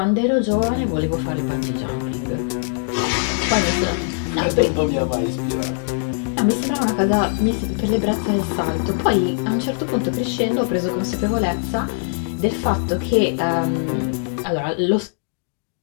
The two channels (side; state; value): right; silent; digital silence